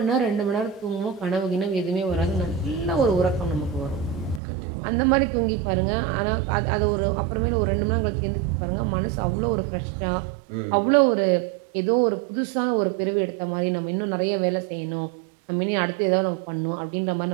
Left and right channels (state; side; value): drops out; left; at 4.4 s